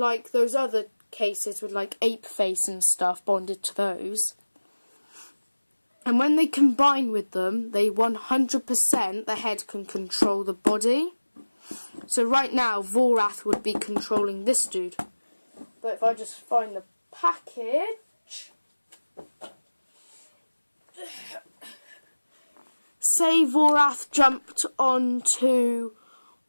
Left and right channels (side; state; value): both; inverted; correlation -1.00